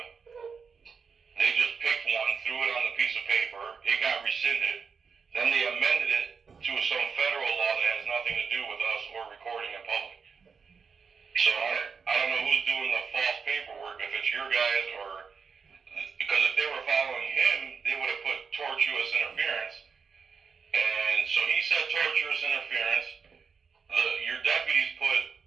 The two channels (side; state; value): left; quieter; 5.7 dB